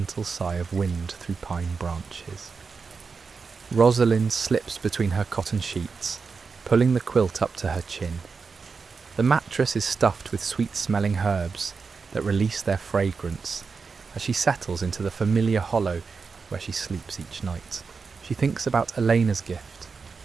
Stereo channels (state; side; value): quieter; left; 5.0 dB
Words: sigh of wind through pine branches. Rosalind slips between her cotton sheets, pulling the quilt up to her chin. The mattress is stuffed with sweet-smelling herbs that release their fragrance as she settles into the familiar hollow where she sleeps each night. She thinks about Elena's gift